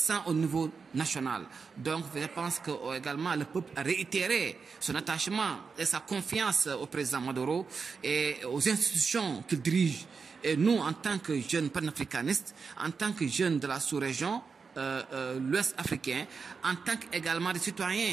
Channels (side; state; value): left; quieter; 5.2 dB